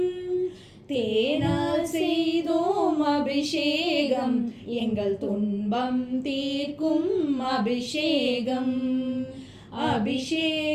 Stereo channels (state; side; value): identical; both; correlation 1.00